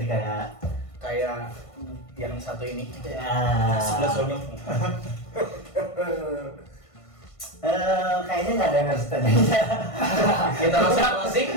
kayak Kayak yang satu ini. ya. Sebelah sonyong. Kayaknya nggak ada yang harus tanya. Kita langsung closing.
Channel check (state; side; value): late; right; 1.5 ms